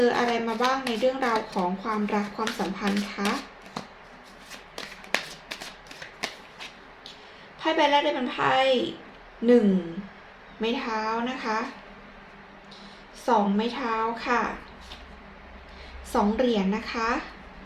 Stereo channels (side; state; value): both; identical; correlation 1.00